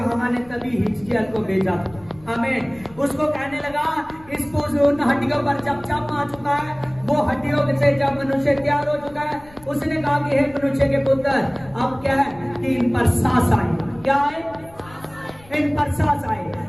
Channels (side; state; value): left; noise; rumble, 24 dB below the sound